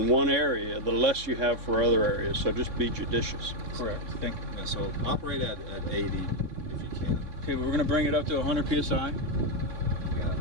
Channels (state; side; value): late; left; 3.6 ms